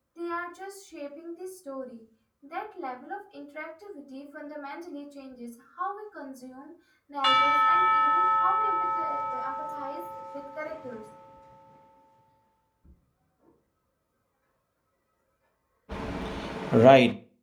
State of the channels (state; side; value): identical; both; correlation 1.00